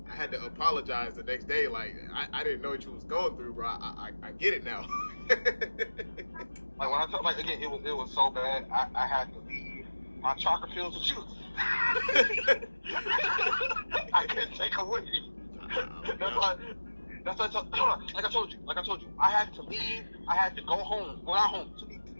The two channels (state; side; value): inverted; both; correlation -1.00